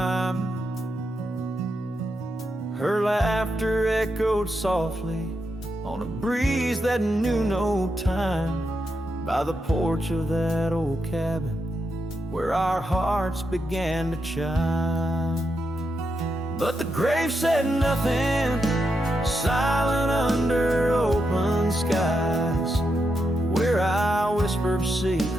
Her laughter echoed softly on a breeze that knew no time, by the porch of that old cabin where our hearts began to chime. But the grave said nothing, silent under open skies, where I whispered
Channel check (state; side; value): normal; both; correlation 0.84